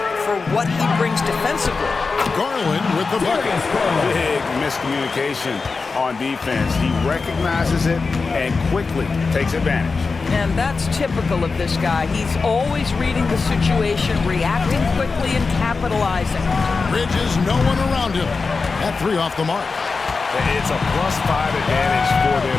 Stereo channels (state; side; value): quieter; right; 4.4 dB